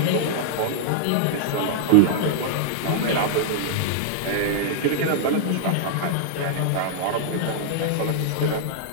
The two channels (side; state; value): both; different; correlation -0.01